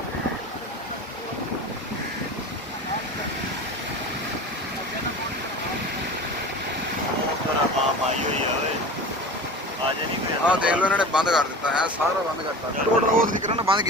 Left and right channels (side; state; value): both; normal; correlation 0.34